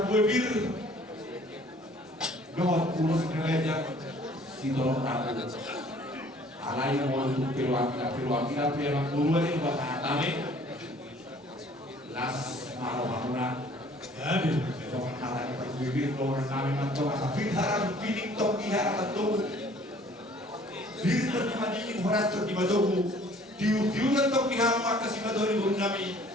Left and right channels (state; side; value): normal; both; correlation 0.55